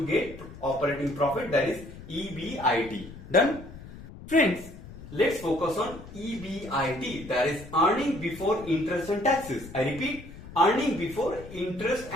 get operating profit, that is EBIT. Done? Friends, let's focus on EBIT, that is earning before interest and taxes. I repeat, earning before interest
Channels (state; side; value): noise; left; rumble, 15 dB below the sound